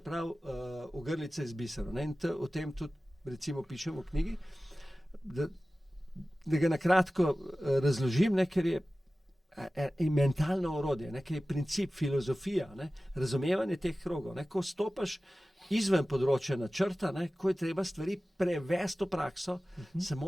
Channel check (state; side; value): normal; both; correlation 0.96